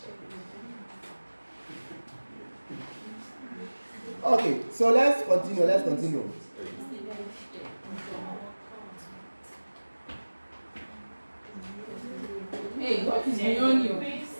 Okay, so let's continue. Hey, what is beyond you?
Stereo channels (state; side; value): inverted; both; correlation -1.00